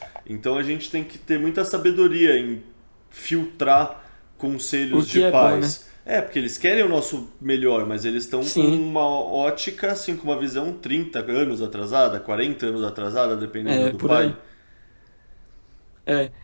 Então a gente tem que ter muita sabedoria em filtrar O conselhos de que é bom, né? pais. É, porque eles querem o nosso melhor, mas eles estão com Sim. uma ótica, assim, com uma visão 30 anos atrasada, 40 anos atrasada, dependendo É, do por pai. aí. É.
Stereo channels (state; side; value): inverted; both; correlation -1.00